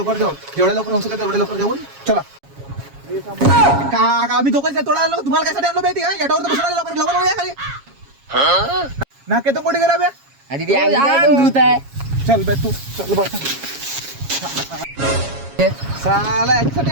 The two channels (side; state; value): left; late; 7.3 ms